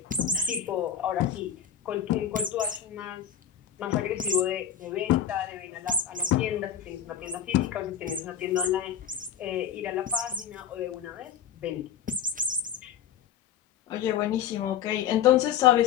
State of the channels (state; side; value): quieter; right; 9.0 dB